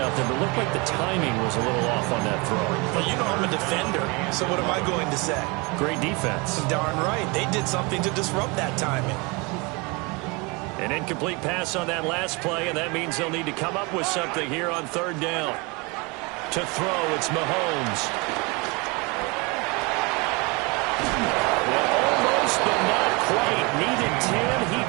out there, but it looked like the timing was a little off on that throw. Well, you know I'm a defender, so what am I going to say? Great defense. Darn right. They did something to disrupt that timing. An incomplete pass on that last play, and that means they'll need to come up with something here on 3rd down. To throw, it's Mahomes. Well, almost, but not quite. Needed 10, he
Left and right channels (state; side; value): quieter; left; 28.1 dB